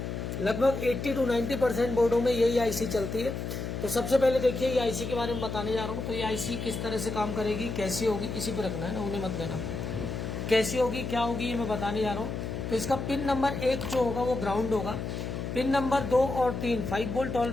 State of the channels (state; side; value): noise; left; hum, 5 dB below the sound